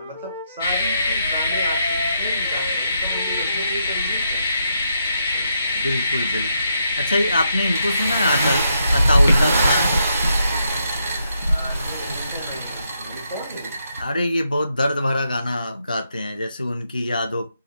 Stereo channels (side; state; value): both; inverted; correlation -0.79